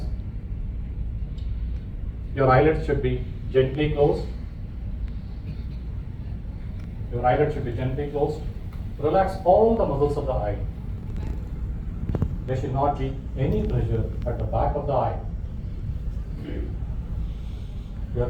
Your eyelids should be gently closed. Your eyelids should be gently closed. Relax all the muscles of the eye. There should not be any pressure at the back of the eye.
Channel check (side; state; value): both; identical; correlation 1.00